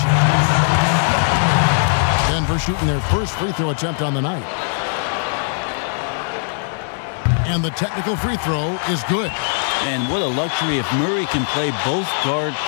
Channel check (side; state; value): right; silent; 64 dB below the other